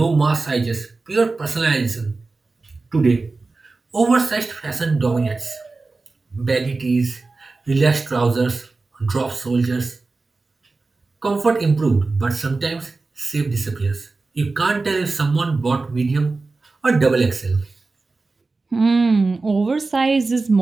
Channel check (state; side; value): quieter; left; 3.7 dB